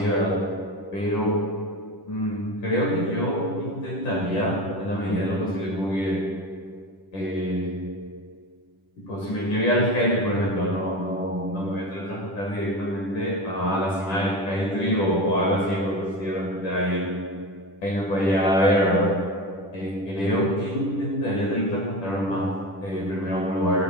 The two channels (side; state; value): right; late; 10 ms